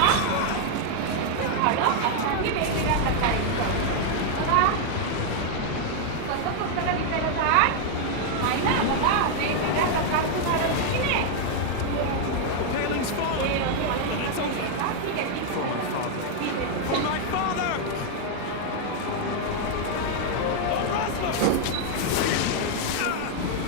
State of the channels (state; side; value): different; both; correlation 0.00